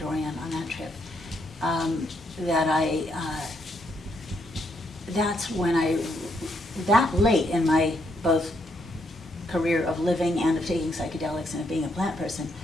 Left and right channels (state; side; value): normal; both; correlation 0.76